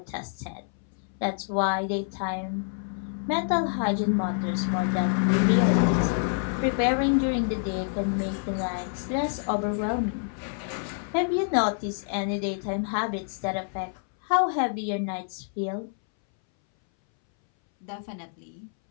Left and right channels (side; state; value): right; silent; 60 dB below the other